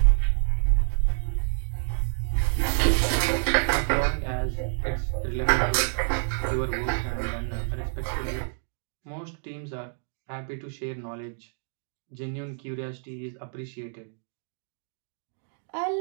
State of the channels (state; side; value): silent; left; digital silence